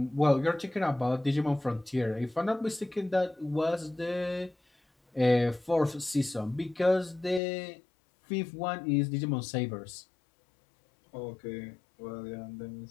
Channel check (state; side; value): drops out; right; at 7.4 s